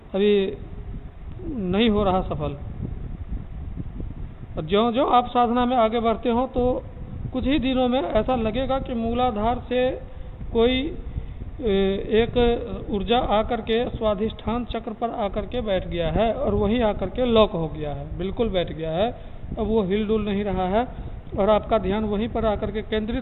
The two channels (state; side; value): identical; both; correlation 1.00